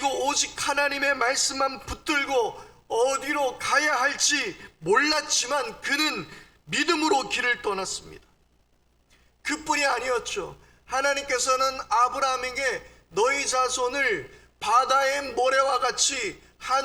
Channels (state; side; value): identical; both; correlation 1.00